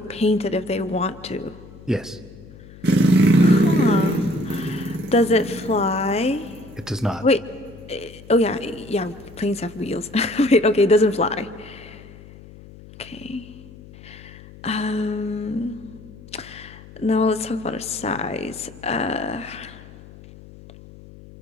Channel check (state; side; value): noise; left; hum, 19 dB below the sound